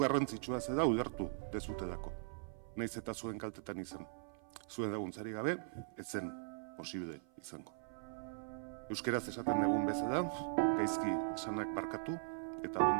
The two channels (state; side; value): silent; left; 51 dB below the other